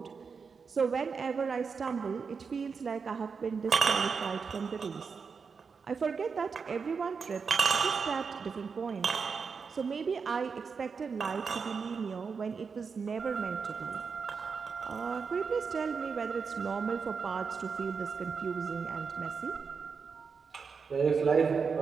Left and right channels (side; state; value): left; quieter; 5.5 dB